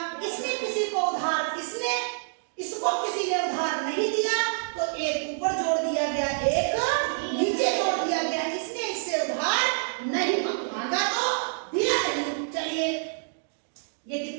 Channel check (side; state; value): left; silent; digital silence